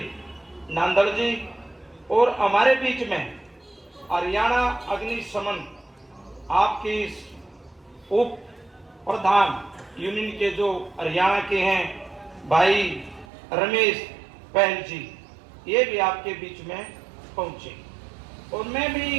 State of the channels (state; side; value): drops out; left; at 13.2 s